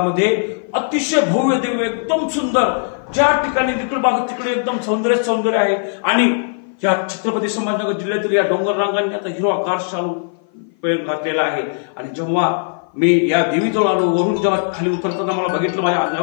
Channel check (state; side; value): silent; right; 56 dB below the other